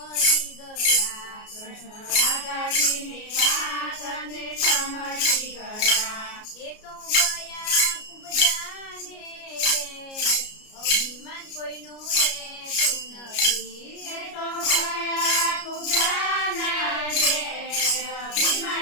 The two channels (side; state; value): right; late; 33 ms